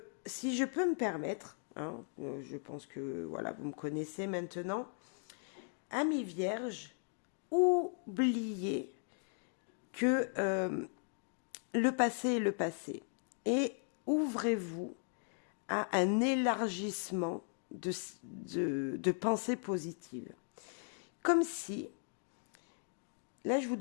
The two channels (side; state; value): right; silent; 53 dB below the other